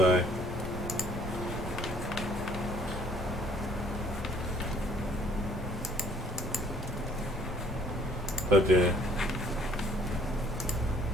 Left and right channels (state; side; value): normal; both; correlation 0.59